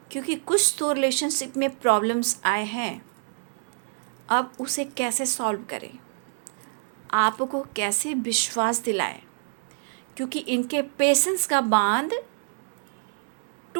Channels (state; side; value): silent; left; 58 dB below the other